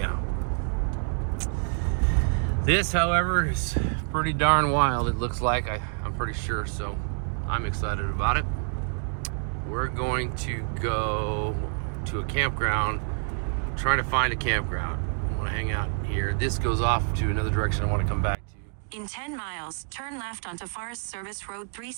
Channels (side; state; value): left; silent; 60 dB below the other